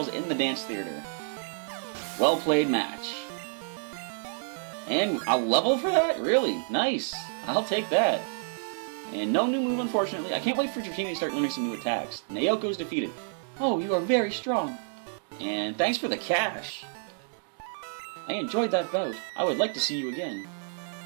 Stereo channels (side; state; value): left; silent; 59 dB below the other